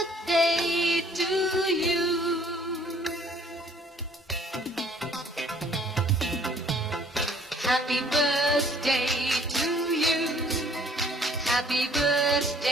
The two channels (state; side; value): normal; both; correlation 0.58